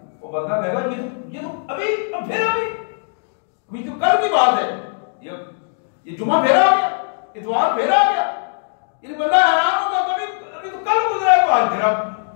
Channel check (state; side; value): silent; right; digital silence